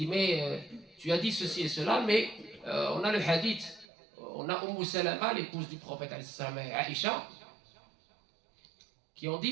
mais tu as dit ceci et cela, mais on a le hadith, on a Salama, l'épouse du prophète et Aïcha, qui ont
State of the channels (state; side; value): drops out; left; at 3.9 s